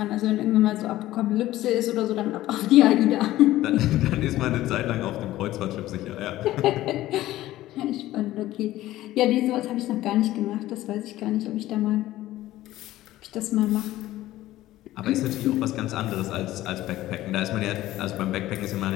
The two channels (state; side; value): quieter; right; 15.4 dB